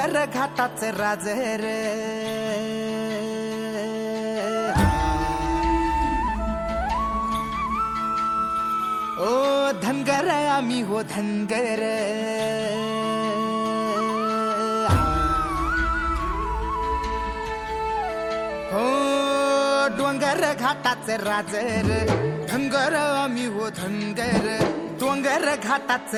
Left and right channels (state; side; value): identical; both; correlation 1.00